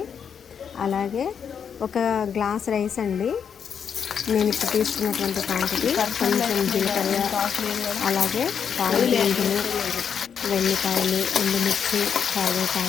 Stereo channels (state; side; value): quieter; right; 7.4 dB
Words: అలాగే ఒక గ్లాస్ రైస్ అండి, నేను ఇప్పుడు తీసుకున్నటువంటి క్వాంటిటీ. కొంచెం జీలకర్ర, అలాగే తాలింపు గింజలు, వెల్లిపాయలు, ఎండుమిర్చి,